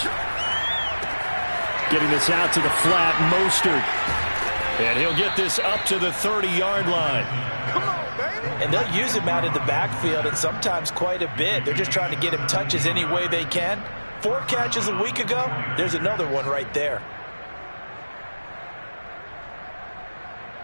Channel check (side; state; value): both; inverted; correlation -1.00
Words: Getting this out to the flat, Mostert. And he'll get this up to the 30-yard line. Come on, baby. And they'll use him out in the backfield, and sometimes quite a bit. They're just trying to get him touches any way they can. 4 catches a week ago. There's another one right there.